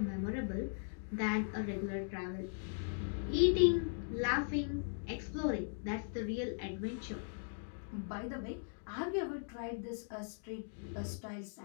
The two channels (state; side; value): silent; right; digital silence